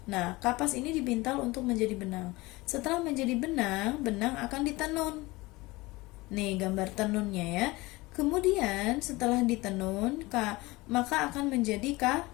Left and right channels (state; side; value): quieter; right; 21.6 dB